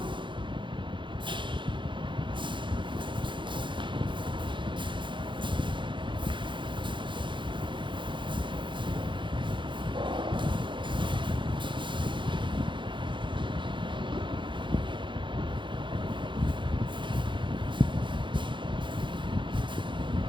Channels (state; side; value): late; left; 0.23 ms